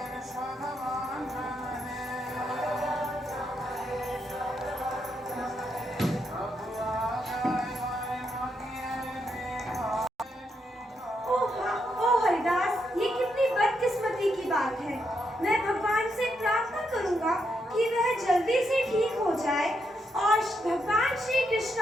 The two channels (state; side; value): normal; both; correlation 0.80